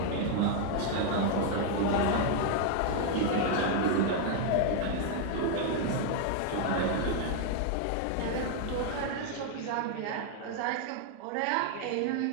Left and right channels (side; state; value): both; different; correlation 0.00